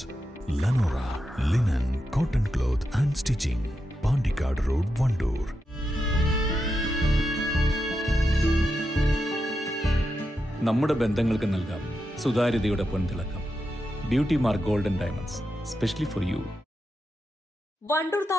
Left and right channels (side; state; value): both; normal; correlation 0.87